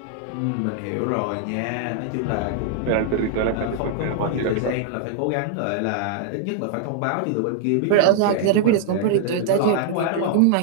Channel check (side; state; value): both; different; correlation -0.01